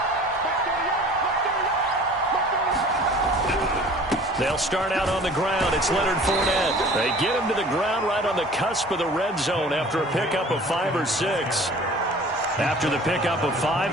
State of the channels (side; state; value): both; normal; correlation 0.47